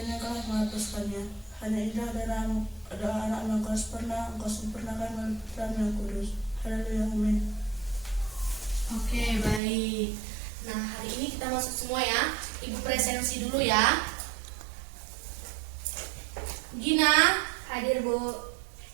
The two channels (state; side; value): drops out; left; at 9.6 s